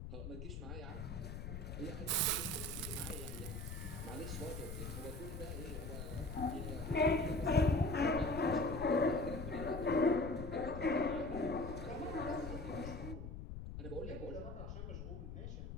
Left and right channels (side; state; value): left; noise; rumble, 7 dB below the sound